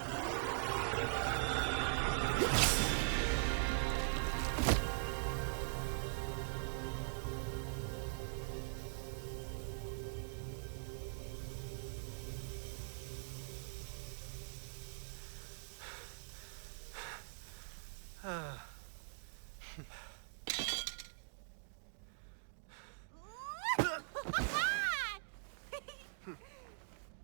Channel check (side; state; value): left; silent; digital silence